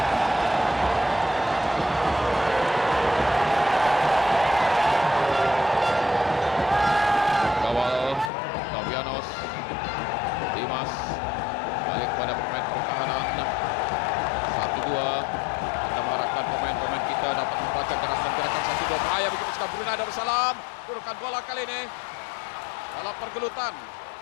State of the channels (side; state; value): right; drops out; at 8.3 s